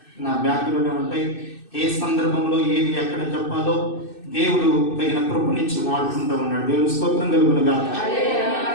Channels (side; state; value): right; late; 2.6 ms